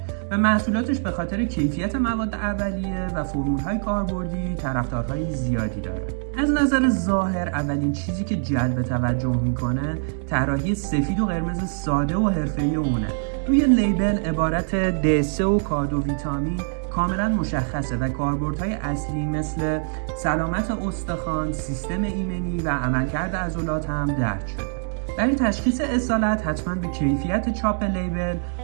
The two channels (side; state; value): left; silent; digital silence